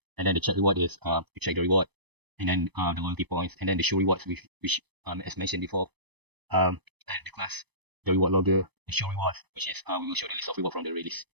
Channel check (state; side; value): late; left; 0.99 ms